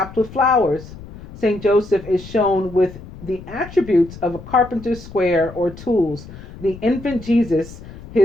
with flowers. St. Joseph is shown with the attributes of a carpenter's square or tools, the infant Jesus,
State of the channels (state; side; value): noise; left; rumble, 16 dB below the sound